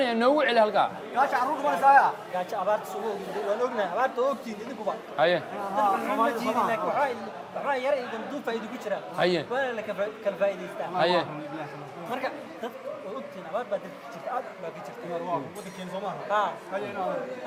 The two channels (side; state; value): both; identical; correlation 1.00